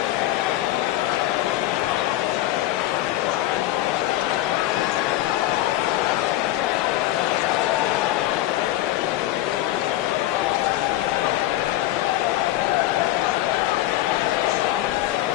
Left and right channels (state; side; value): quieter; right; 15.1 dB